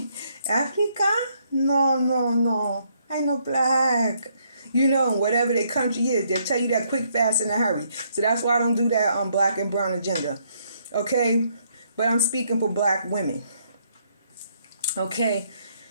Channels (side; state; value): both; inverted; correlation -0.71